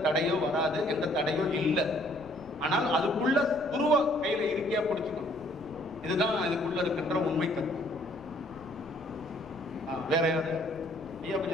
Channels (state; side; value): noise; left; rumble, 22 dB below the sound